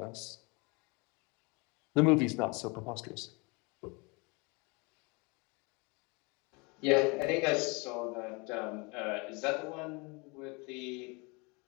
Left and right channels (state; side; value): quieter; right; 29.4 dB